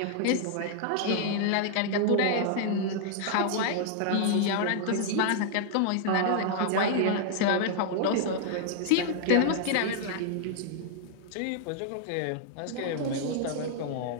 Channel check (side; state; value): both; different; correlation -0.01